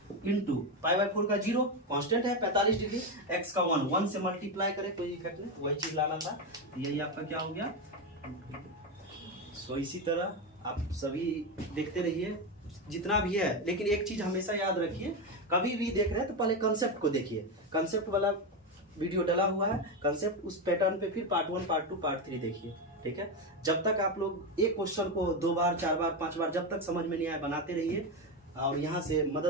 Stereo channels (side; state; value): both; normal; correlation 0.12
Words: इंटू π/4 का 0 कांस्टेंट है 45 डिग्री, x का 1 से मल्टीप्लाई करें, कोई इफेक्ट नहीं, वही चीज लाना था। यही आपका क्या हो गया। सो इसी तरह आप सभी देखते रहिए जितना भी है, लेकिन एक चीज हमेशा याद रखिए, कभी भी देख रहे हैं तो पहले कंसेप्ट को देखिए। कंसेप्ट वाला वीडियो डला हुआ है, कंसेप्ट उस पैटर्न पे फिर पार्ट 1 पार्ट 2 पार्ट 3 देखिए। ठीक है, जब तक आप लोग एक क्वेश्चन को 2 बार 4 बार 5 बार जब तक समझ में नहीं आए बनाते रहिए और यहाँ से